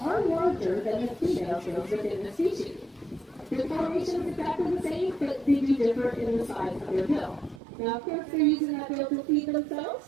larger than the female's bills within the species. The formation is exactly the same, but they do differ in the size of their bill. Now, of course, they're using that bill to feed themselves.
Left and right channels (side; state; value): left; drops out; at 7.6 s